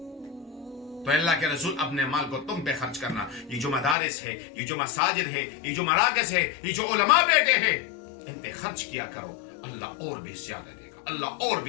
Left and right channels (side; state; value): right; drops out; at 4.0 s